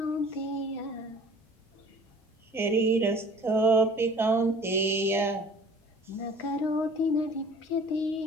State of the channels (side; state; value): both; normal; correlation 0.49